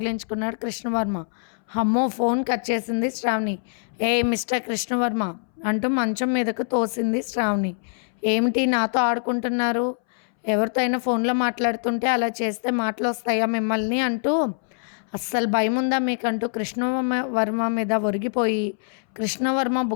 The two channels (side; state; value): right; silent; 62 dB below the other